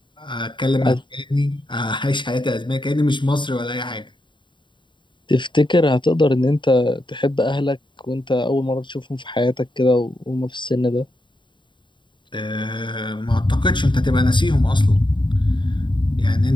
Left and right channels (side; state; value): right; late; 0.23 ms